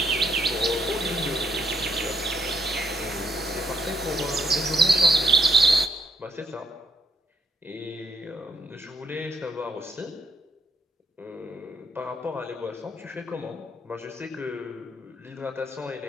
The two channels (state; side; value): normal; both; correlation 0.73